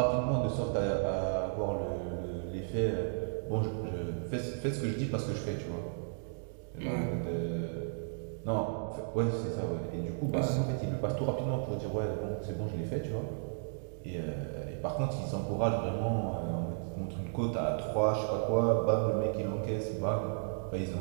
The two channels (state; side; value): silent; left; digital silence